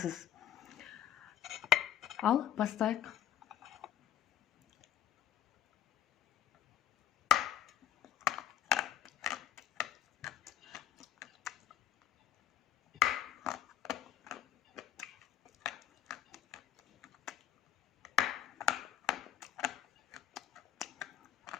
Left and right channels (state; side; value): quieter; right; 11.2 dB